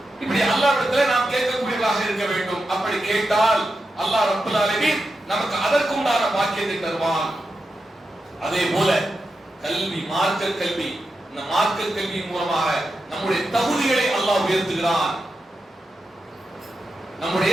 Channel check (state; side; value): normal; both; correlation 0.89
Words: இப்படி அல்லாஹ்விடத்தில் நாம் கேட்கக்கூடியவர்களாக இருக்க வேண்டும். அப்படி கேட்டால் அல்லாஹ் ரப்பல் ஆலமீன் நமக்கு அதற்குண்டான பாக்கியத்தை தருவான். அதே போல கல்வி, மார்க்க கல்வி, இந்த மார்க்க கல்வியின் மூலமாக நம்முடைய தகுதிகளை அல்லாஹ் உயர்த்துகிறான்,